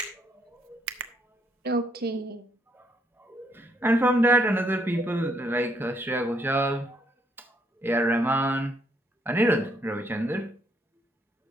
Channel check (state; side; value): normal; both; correlation 0.72